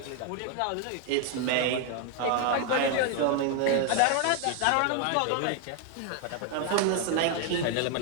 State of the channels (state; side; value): different; both; correlation 0.01